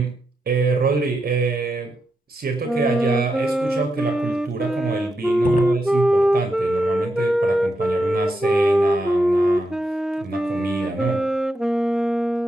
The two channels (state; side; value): normal; both; correlation 0.85